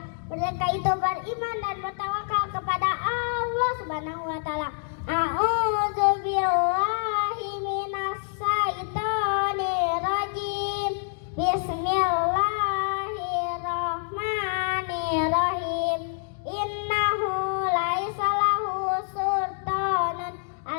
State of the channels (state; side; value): silent; right; digital silence